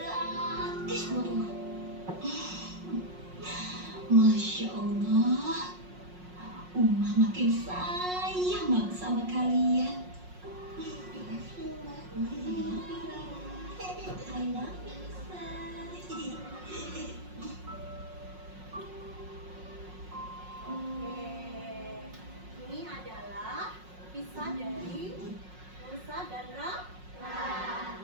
buat Uma. Masya Allah, Uma makin sayang banget sama kalian. Makasih, Mbak. I love you. Oke, ini adalah kisah dari Musa dan Rara. Nah,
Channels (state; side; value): late; left; 5.5 ms